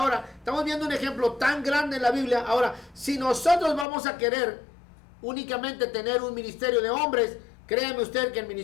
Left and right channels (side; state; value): right; drops out; at 3.9 s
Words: estamos viendo un ejemplo tan grande en la Biblia. Ahora, si nosotros vamos a querer únicamente tener un ministerio de hombres, créame usted que el